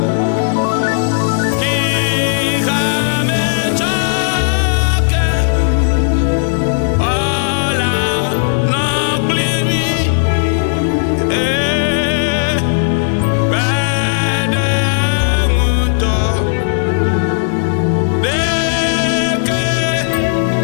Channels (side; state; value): right; silent; digital silence